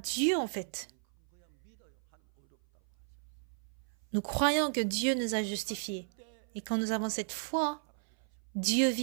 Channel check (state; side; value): silent; left; 55 dB below the other